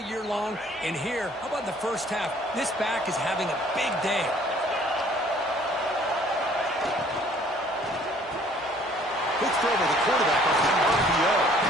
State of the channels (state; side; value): normal; both; correlation 0.57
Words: long. And here, how about the first half? This back is having a big day. Quick throw to the quarterback off the RPO.